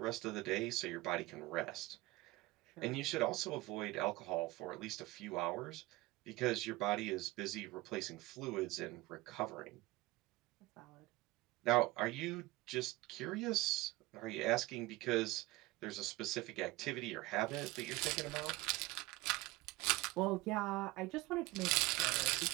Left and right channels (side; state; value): left; quieter; 20.2 dB